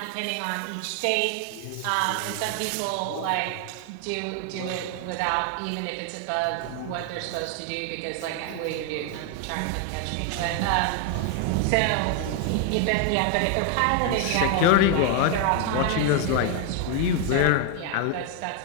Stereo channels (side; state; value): both; different; correlation 0.01